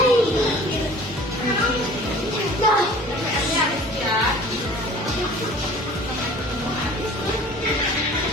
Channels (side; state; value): both; normal; correlation 0.46